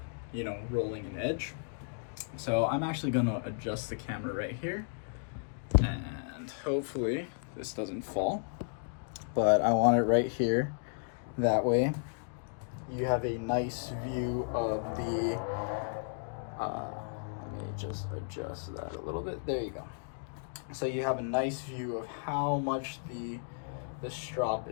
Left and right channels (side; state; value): right; silent; digital silence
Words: rolling an edge. So I'm actually gonna adjust the camera right here, and hopefully this doesn't fall, but I want it right here. That way you have a nice view of the let me just adjust that a little bit. There you go. So you have a nice view of how much the strop